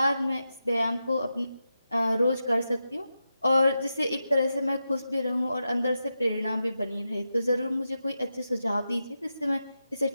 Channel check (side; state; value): both; inverted; correlation -0.89